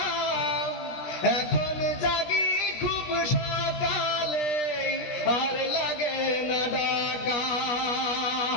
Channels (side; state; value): right; late; 17 ms